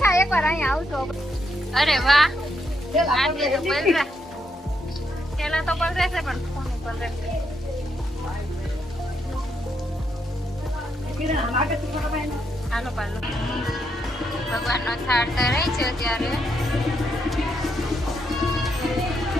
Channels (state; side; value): normal; both; correlation 0.79